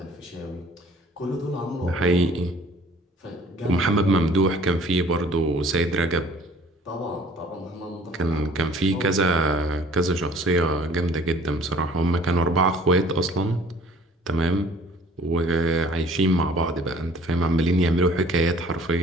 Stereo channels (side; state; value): both; normal; correlation 0.53